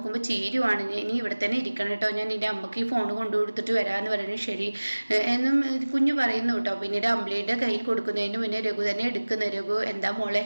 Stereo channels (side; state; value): both; inverted; correlation -1.00